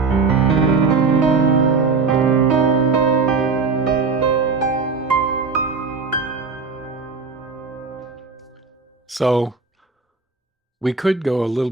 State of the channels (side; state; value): left; quieter; 4.6 dB